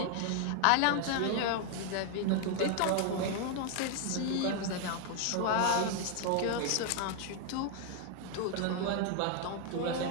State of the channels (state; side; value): different; both; correlation 0.00